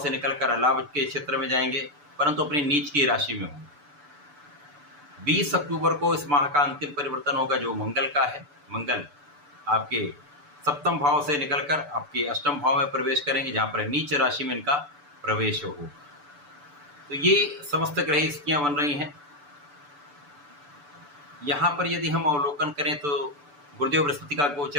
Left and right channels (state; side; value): late; left; 6.9 ms